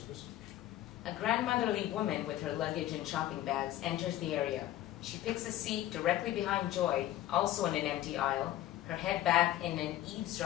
A grandmotherly woman with her luggage and shopping bags enters the area. She picks a seat directly behind Joy, also in an empty aisle, her head back in an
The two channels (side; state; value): right; quieter; 13.7 dB